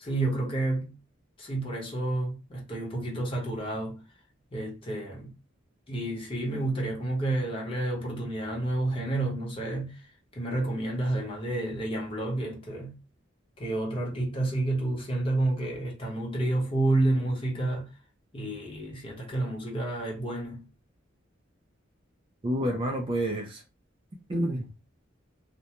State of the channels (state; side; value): normal; both; correlation 0.81